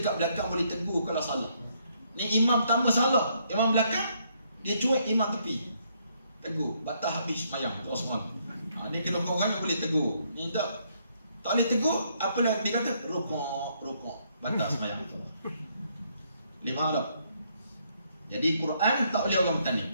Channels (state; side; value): inverted; both; correlation -0.72